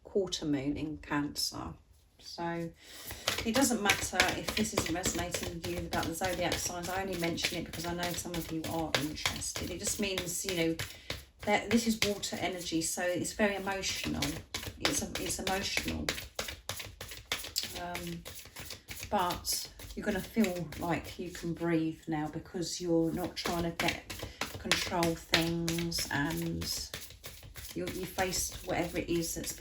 quarter moon in Cancer. So it doesn't matter if this isn't resonating with you about the zodiac signs. I only mention it because I know some of you are interested. It just means, you know, that this is water energy, so it's very emotional. It's emotional. But you're going to feel like you can breathe now because you're not trying to control things, and you faced whatever it is that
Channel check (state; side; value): identical; both; correlation 1.00